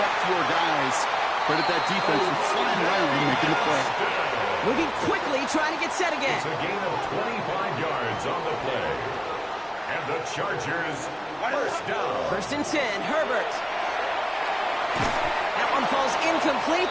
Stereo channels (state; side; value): identical; both; correlation 1.00